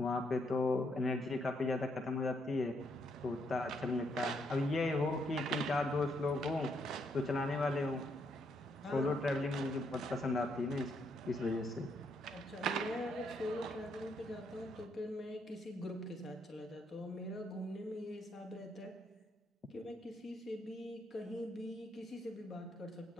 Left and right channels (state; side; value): normal; both; correlation 0.75